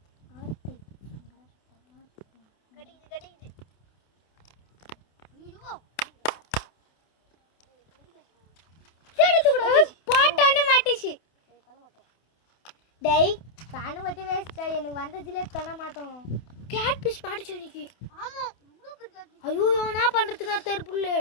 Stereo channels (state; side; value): late; right; 28 ms